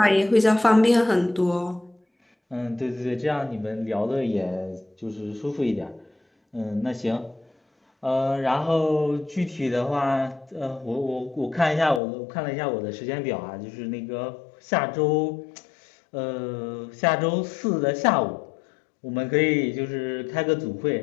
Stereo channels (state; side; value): drops out; right; at 12.0 s